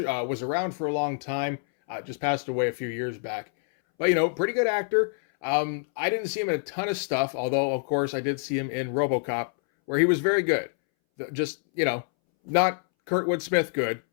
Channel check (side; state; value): right; silent; 61 dB below the other